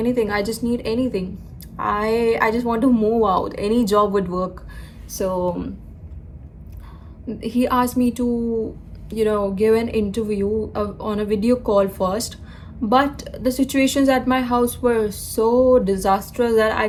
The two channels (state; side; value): identical; both; correlation 1.00